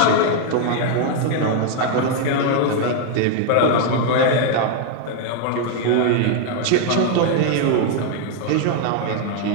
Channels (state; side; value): different; both; correlation 0.00